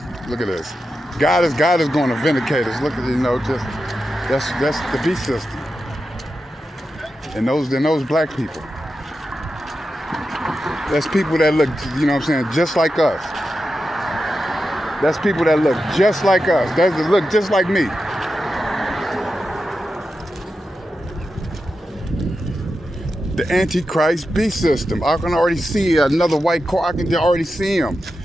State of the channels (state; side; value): normal; both; correlation 0.90